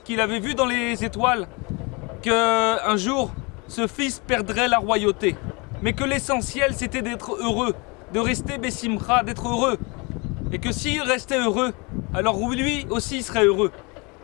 avait vu dans les étoiles qu'un jour, ce fils perdrait la royauté. Mais que l'essentiel, c'était d'être heureux, de rester Bessimcha, d'être heureux. Et que s'il restait heureux, alors lui aussi serait heureux.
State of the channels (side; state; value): right; quieter; 28.9 dB